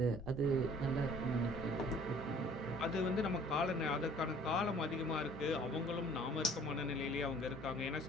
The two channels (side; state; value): both; normal; correlation 0.53